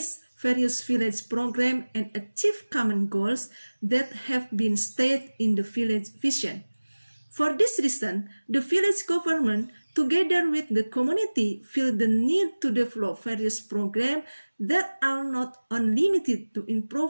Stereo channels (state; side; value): inverted; both; correlation -1.00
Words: various village programs and achieve common goals that have been stated in the village vision. For this reason, the village government, together with the community, feel the need to develop various programs that are not unlimited to